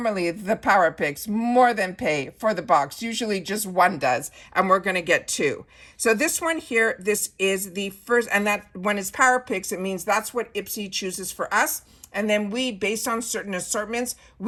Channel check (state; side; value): identical; both; correlation 1.00